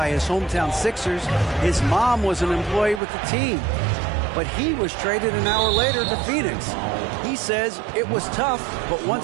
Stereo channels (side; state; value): left; drops out; at 3.0 s